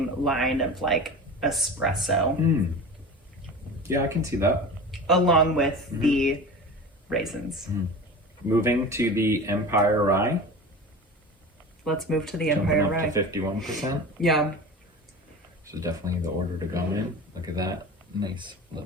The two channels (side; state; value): both; normal; correlation 0.33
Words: line of like espresso. Yeah, I can see that. Along with the raisins. Moving to the Empire Rye. Let's move to the Jumping Empire up Rye. to 51%. Yeah. This is definitely the order to go in. Look at that. Nice